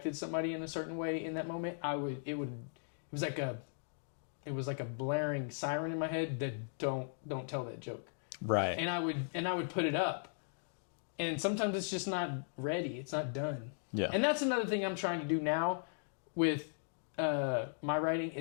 somebody in a certain way in that moment, it was like a blaring siren in my head that don't tell that joke. Right. And I would put it up. And sometimes it's just not ready. It's not done. Yeah. And that's another thing I'm trying to do now with my writing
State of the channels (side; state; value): right; silent; digital silence